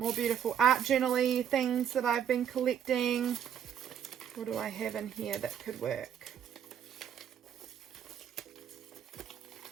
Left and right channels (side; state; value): left; quieter; 9.0 dB